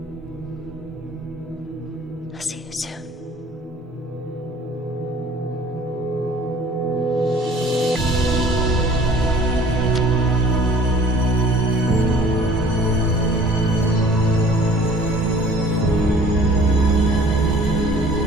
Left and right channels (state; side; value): normal; both; correlation 0.51